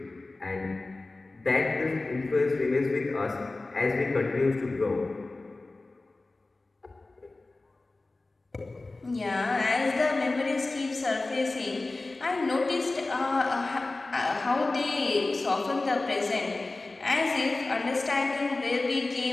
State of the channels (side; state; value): right; quieter; 3.2 dB